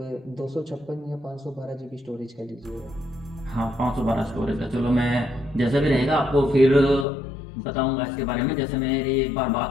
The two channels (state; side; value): drops out; right; at 7.1 s